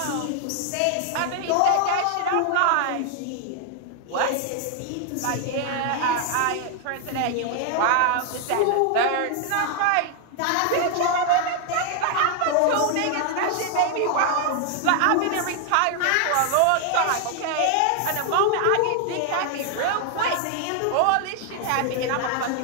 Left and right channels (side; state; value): both; different; correlation 0.00